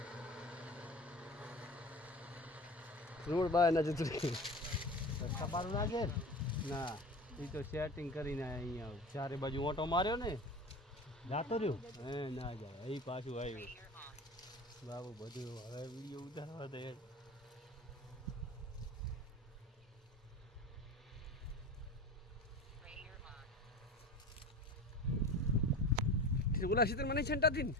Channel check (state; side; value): normal; both; correlation 0.34